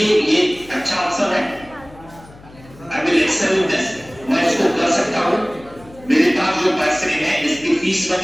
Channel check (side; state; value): left; noise; hum, 22 dB below the sound